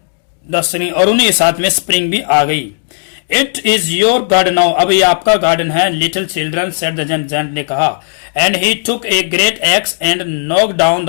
the spring, और उन्हीं के साथ में स्प्रिंग भी आ गई। It is your garden now, अब ये आपका गार्डन है, little children said the giant ने कहा। And he took a great x and knock down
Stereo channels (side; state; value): right; silent; digital silence